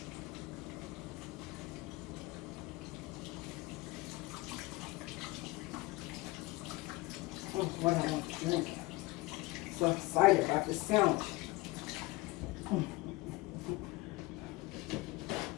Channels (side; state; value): right; quieter; 20.7 dB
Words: What I want to drink. So excited about this sandwich.